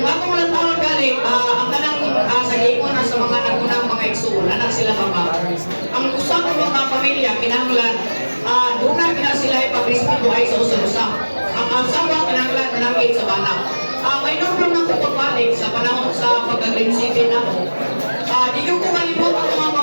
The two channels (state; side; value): inverted; both; correlation -1.00